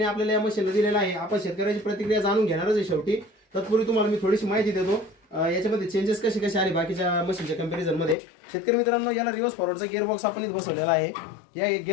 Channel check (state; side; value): drops out; right; at 8.2 s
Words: आपल्याला या मशीनला दिलेला आहे. आपण शेतकऱ्याची प्रतिक्रिया जाणून घेणारच आहे शेवटी. तत्पूर्वी तुम्हाला मी थोडीशी माहिती देतो याच्यामध्ये चेंजेस कसे कसे आले बाकीच्या मशीनच्या कंपॅरिझन मध्ये. शेतकरी मित्रांनो, याला रिव्हर्स फॉरवर्डचा गिअर बॉक्स आपण इथे बसवलेला आहे. या